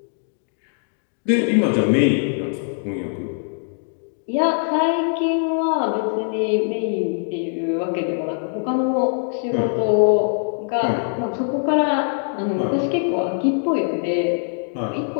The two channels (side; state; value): right; silent; digital silence